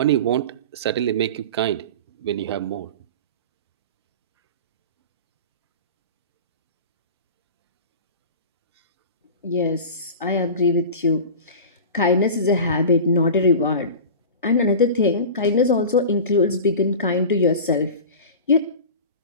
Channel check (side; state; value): both; inverted; correlation -0.34